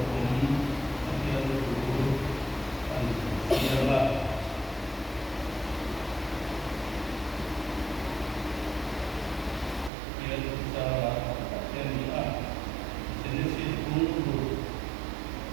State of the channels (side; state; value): left; drops out; at 9.9 s